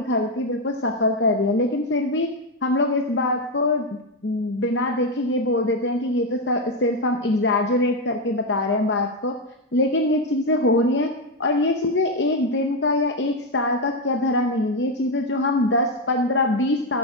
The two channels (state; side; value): normal; both; correlation 0.07